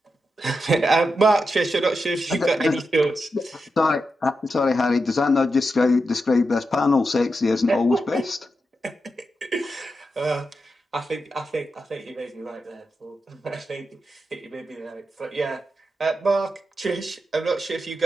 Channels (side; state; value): both; normal; correlation 0.87